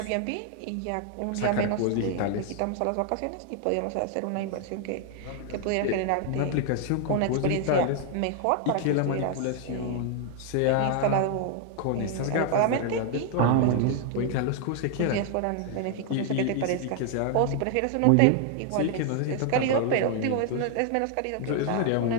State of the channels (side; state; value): both; different; correlation 0.00